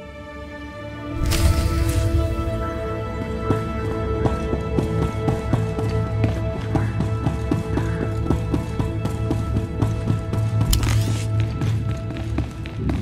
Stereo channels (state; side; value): identical; both; correlation 1.00